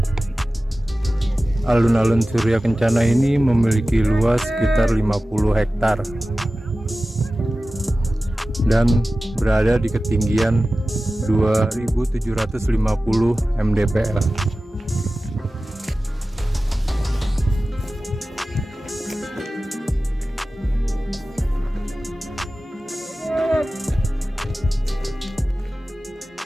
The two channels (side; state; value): both; normal; correlation 0.96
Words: Alun-alun Surya Kencana ini memiliki luas sekitar 50 hektar dan berada di ketinggian 2750 mdpl.